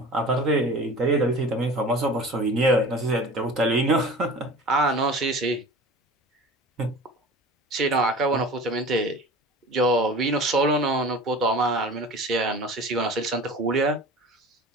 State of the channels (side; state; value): both; normal; correlation 0.39